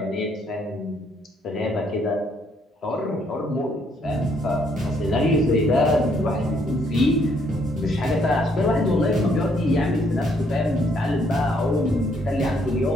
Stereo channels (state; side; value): normal; both; correlation 0.70